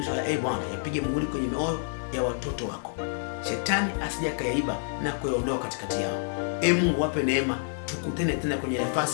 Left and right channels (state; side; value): silent; right; 59 dB below the other